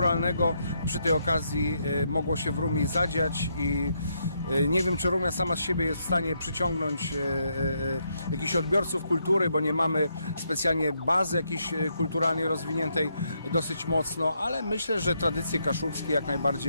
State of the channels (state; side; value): inverted; both; correlation -0.77